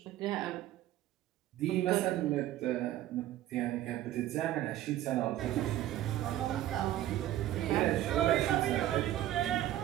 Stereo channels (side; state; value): left; quieter; 13.5 dB